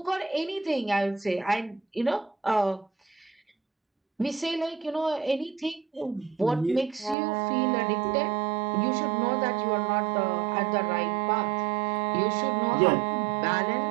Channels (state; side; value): drops out; left; at 7.2 s